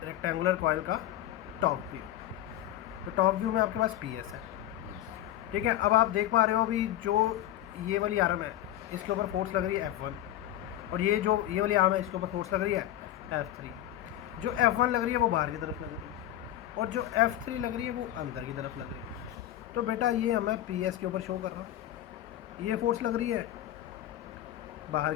रेक्टेंगुलर कॉइल का टॉप व्यू। तो टॉप व्यू में आपके पास PS है। Yes. ठीक है, अब आप देख पा रहे हो भी जो ये वाली आर्म है इसके ऊपर फोर्स लग रही है F1, और ये जो ये वाली आर्म है इसके ऊपर फोर्स लग रही है F3। जो F1 लग रही है वो बाहर की तरफ लग रही है, और जो F3 लग रही है वो अंदर की तरफ लग रही है। तो बेटा ये मैं PS के ऊपर शो कर रहा हूँ। ये फोर्स लग रही है बाहर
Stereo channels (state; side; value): quieter; right; 13.0 dB